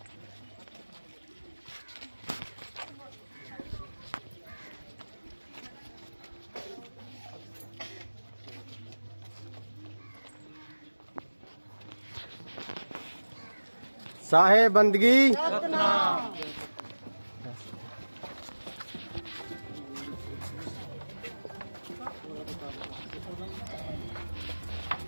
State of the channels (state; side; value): inverted; both; correlation -1.00